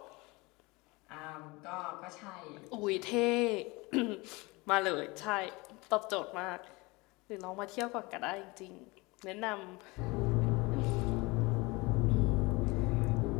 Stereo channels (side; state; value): right; quieter; 24.4 dB